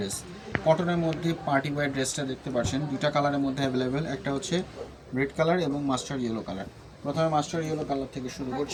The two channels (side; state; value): both; identical; correlation 1.00